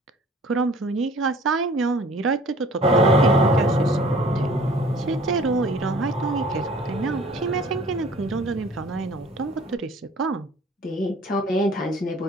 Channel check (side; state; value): both; normal; correlation 0.50